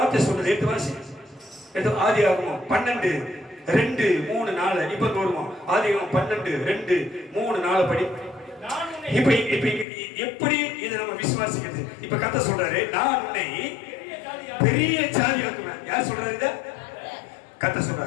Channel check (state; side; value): drops out; right; at 9.9 s